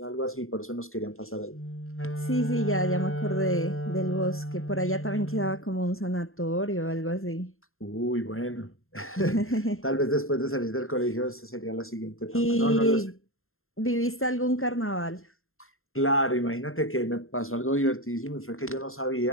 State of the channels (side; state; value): right; late; 0.61 ms